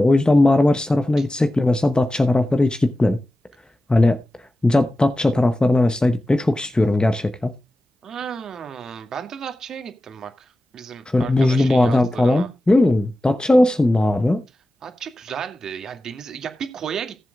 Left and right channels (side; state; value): both; normal; correlation 0.94